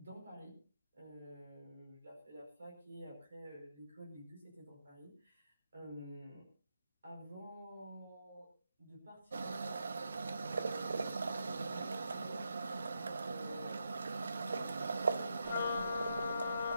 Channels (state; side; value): inverted; both; correlation -0.84